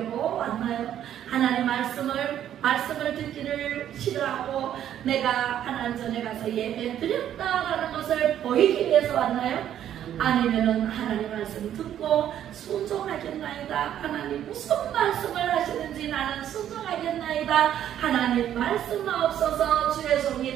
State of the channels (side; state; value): left; quieter; 10.7 dB